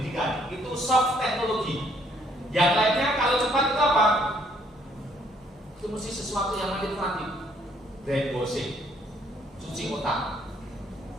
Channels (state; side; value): normal; both; correlation 0.66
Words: Itu soft teknologi. Yang lainnya kalau cepat itu apa? Itu mesti sesuatu yang manipulatif. Brainwashing, cuci otak.